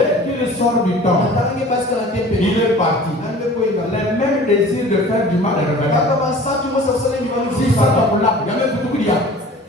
qu'il sort du temps, il est parti. Les mêmes désirs de faire du mal et revenir. Si ça t'a pour là, il y a même tout qu'il y a.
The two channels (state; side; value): normal; both; correlation 0.44